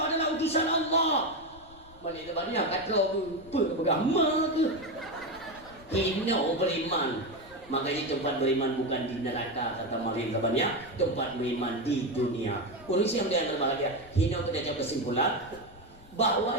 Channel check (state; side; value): noise; left; rumble, 22 dB below the sound